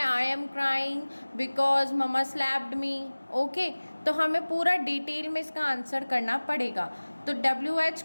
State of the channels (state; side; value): inverted; both; correlation -1.00